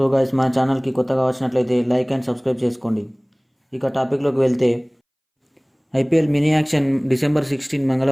guys, మన ఛానల్కి కొత్తగా వచ్చినట్లయితే లైక్ అండ్ సబ్స్క్రైబ్ చేసుకోండి. ఇక టాపిక్లోకి వెళ్తే, ఐపీఎల్ మినీ యాక్షన్ డిసెంబర్ 16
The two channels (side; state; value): both; identical; correlation 1.00